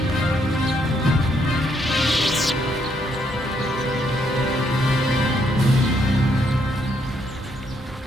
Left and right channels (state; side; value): normal; both; correlation 0.73